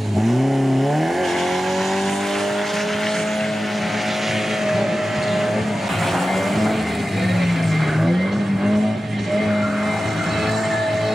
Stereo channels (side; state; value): both; normal; correlation 0.94